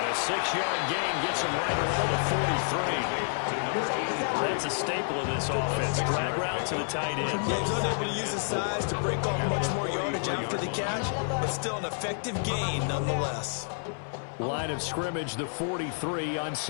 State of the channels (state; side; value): silent; right; 58 dB below the other